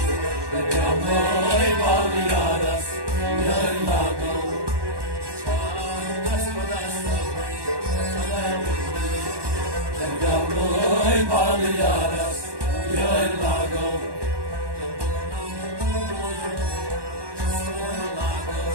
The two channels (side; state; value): left; late; 1.2 ms